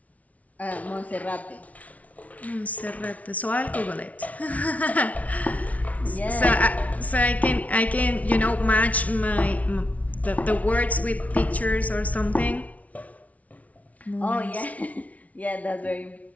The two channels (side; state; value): right; late; 0.069 ms